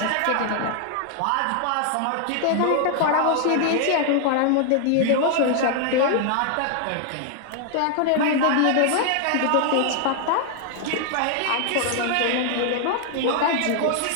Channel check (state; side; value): different; both; correlation 0.00